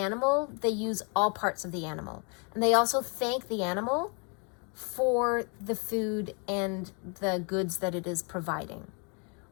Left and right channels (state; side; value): quieter; right; 36.5 dB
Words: they use all parts of the animal. And they also thank the animal for the food and the goods that it is providing,